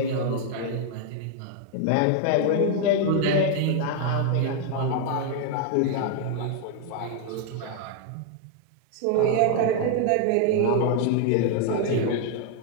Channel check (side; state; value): both; different; correlation 0.00